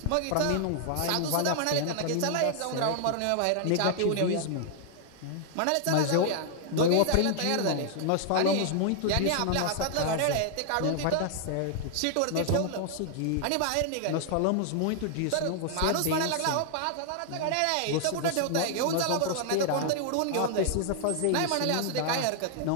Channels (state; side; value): different; both; correlation 0.00